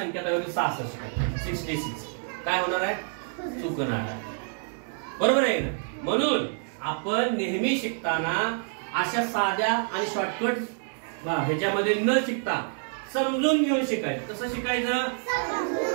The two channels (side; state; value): left; silent; 60 dB below the other